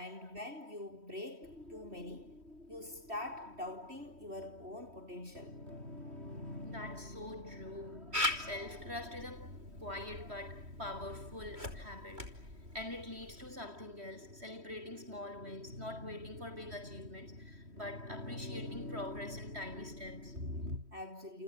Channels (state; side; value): late; left; 3.1 ms